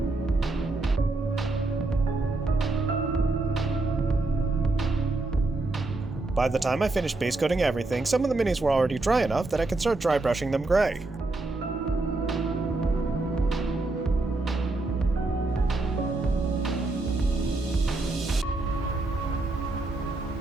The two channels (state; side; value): quieter; left; 3.1 dB